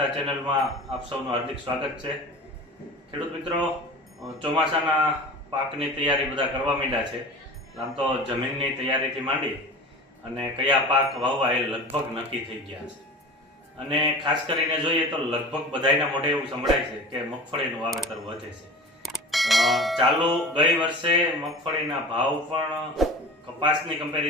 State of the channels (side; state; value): both; normal; correlation 0.36